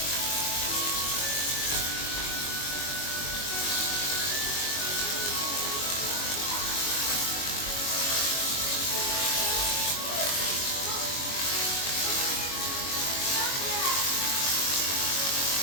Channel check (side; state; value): right; late; 22 ms